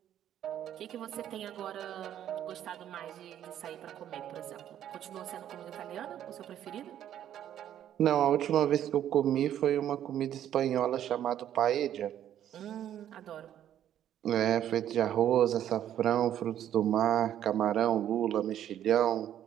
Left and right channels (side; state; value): left; quieter; 10.9 dB